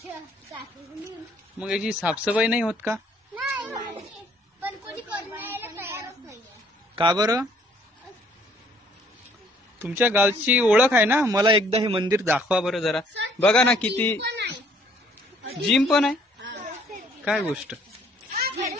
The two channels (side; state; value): both; normal; correlation 0.62